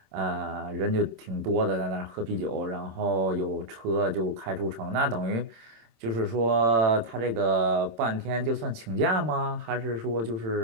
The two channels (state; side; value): late; left; 26 ms